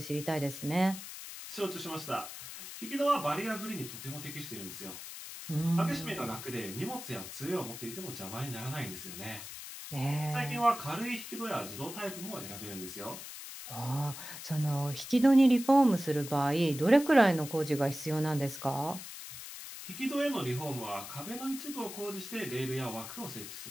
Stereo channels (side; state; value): left; noise; hiss, 11 dB below the sound